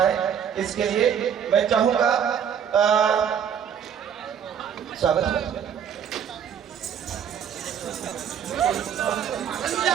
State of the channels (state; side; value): quieter; left; 8.2 dB